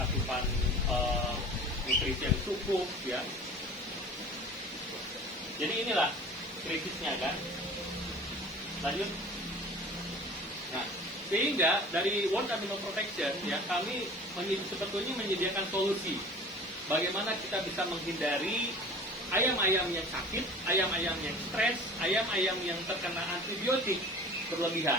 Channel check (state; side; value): normal; both; correlation 0.42